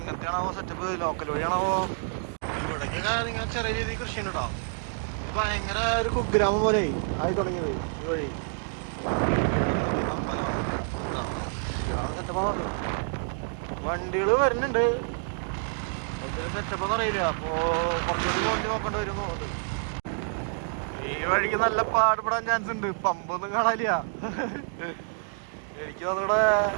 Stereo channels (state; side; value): silent; left; 59 dB below the other